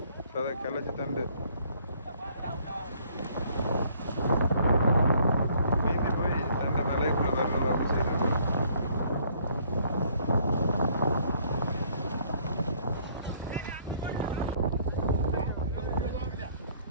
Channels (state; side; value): inverted; both; correlation -0.62